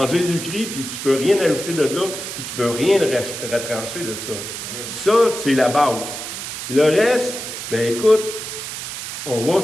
Jésus-Christ, puis tu ne peux rien ajouter de là, puis tu ne peux rien retrancher de ça. Ça, c'est la base. Le reste, ben écoute, on va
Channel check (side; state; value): right; noise; hiss, 7 dB below the sound